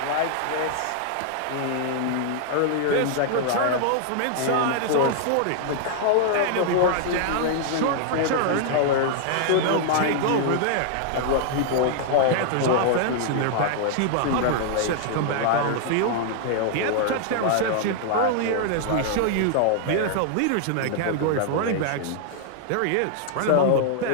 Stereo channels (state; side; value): different; both; correlation -0.01